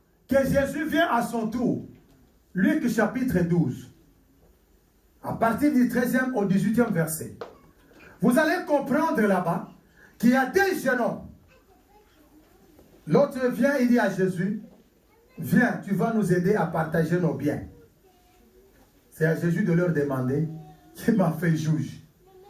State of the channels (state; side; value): identical; both; correlation 1.00